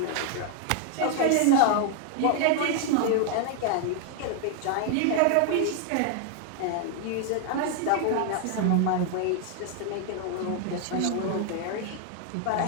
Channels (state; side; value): different; both; correlation 0.00